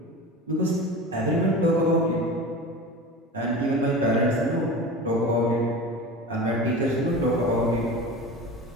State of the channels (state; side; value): normal; both; correlation 0.32